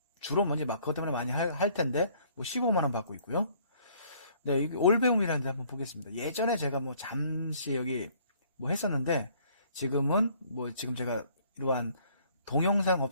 주로 그것 때문에 많이 할 텐데 15만원 받고 있고요. 여기 올배움이라는 데 한번 보겠습니다. 예전에 제가 잠시 여기 했었는데 지금은 지금 제가 이러한 동영상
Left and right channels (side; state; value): both; inverted; correlation -0.60